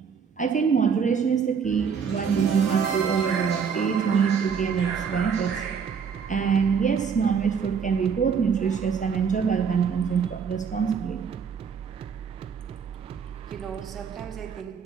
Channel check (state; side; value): quieter; left; 6.5 dB